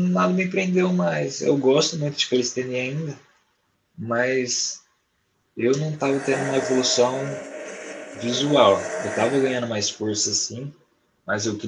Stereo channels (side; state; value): both; identical; correlation 1.00